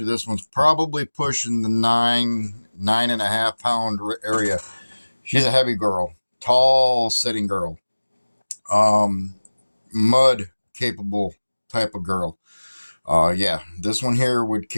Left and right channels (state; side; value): inverted; both; correlation -1.00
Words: this one's probably pushing the 9.5 pound area. She's a heavy girl, tall sitting girl, mud capable type of girl. Yeah, this one here would